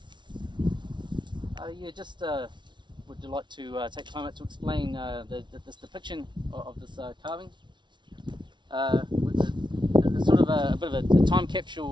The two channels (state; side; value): late; left; 0.23 ms